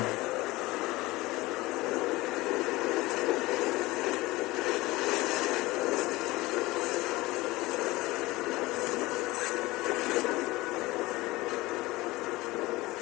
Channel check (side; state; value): right; quieter; 20.3 dB